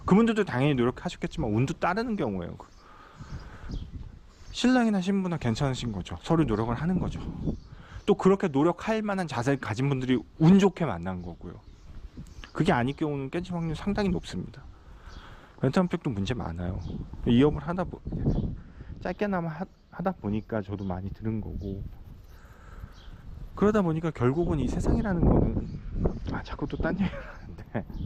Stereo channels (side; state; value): both; identical; correlation 1.00